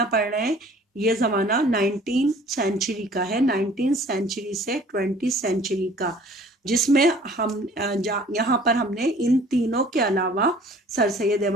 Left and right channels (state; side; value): normal; both; correlation 0.52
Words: پڑھ رہے ہیں یہ زمانہ 19 سینچری کا ہے، 19 سینچری سے 20 سینچری کا، جس میں ہم یہاں پر ہم نے ان تینوں کے علاوہ سر سید